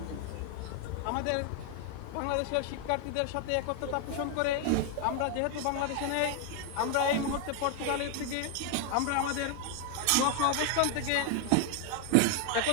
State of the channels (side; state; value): both; different; correlation 0.01